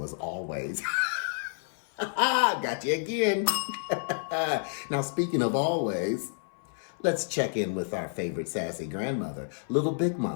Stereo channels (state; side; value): silent; right; 56 dB below the other